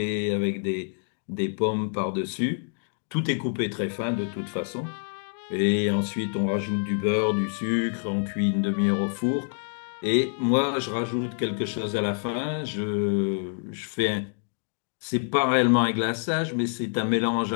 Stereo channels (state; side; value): silent; right; 60 dB below the other